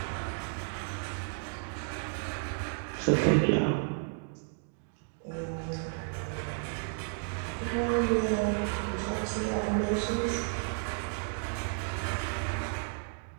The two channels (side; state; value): left; silent; 56 dB below the other